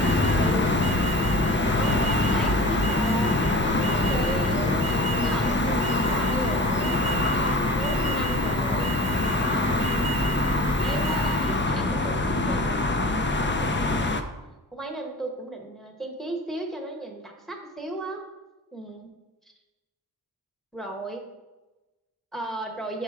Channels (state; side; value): normal; both; correlation 0.37